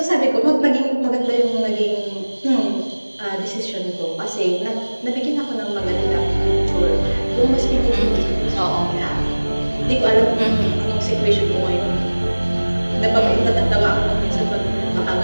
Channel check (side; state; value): both; inverted; correlation -1.00